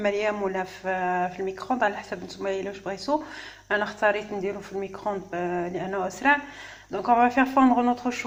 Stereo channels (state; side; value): identical; both; correlation 1.00